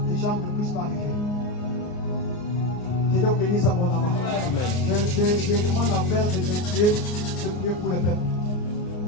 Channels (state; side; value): late; right; 33 ms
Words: les gens ne puissent pas arriver. Que Dieu bénisse abondamment. Je demande à faire de prier pour le peuple.